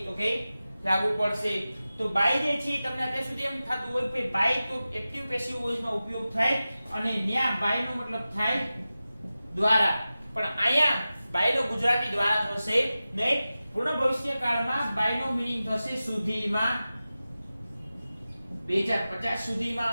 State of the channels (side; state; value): both; inverted; correlation -0.95